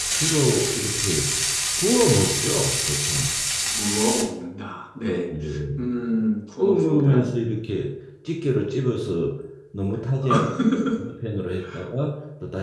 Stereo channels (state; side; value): identical; both; correlation 1.00